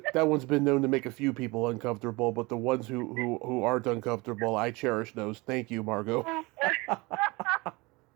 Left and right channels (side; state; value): left; quieter; 24.5 dB